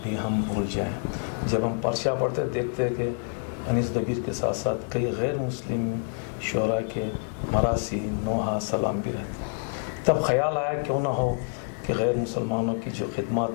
بھی ہم بھول جائیں۔ جب ہم پرچہ پڑھتے دیکھتے ہیں کہ انیس دبیر کے ساتھ ساتھ کئی غیر مسلم شعراء کے مراثی نوحہ سلام بھی رہتے ہیں، تب خیال آیا کیوں نہ ہو کہ غیر مسلمانوں کی جو خدمات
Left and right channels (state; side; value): silent; right; 60 dB below the other